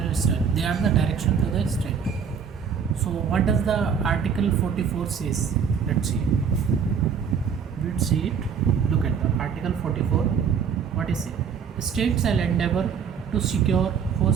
state. They are the direction to the state. So what does the Article 44 says? Let's see. Let's see it. Look at the Article 44. What is it? The state shall endeavor to secure for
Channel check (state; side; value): quieter; left; 6.8 dB